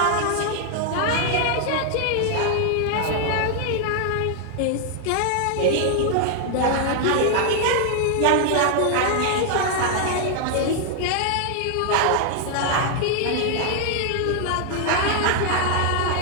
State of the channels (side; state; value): both; different; correlation 0.00